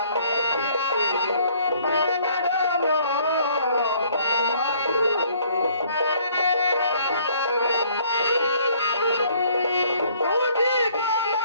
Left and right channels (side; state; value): both; inverted; correlation -0.60